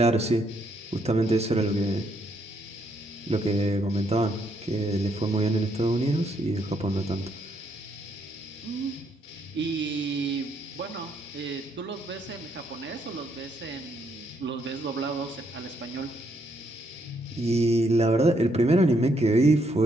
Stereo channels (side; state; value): both; normal; correlation 0.74